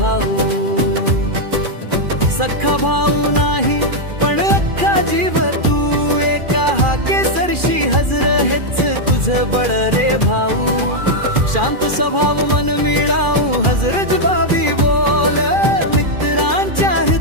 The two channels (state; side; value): late; left; 2.4 ms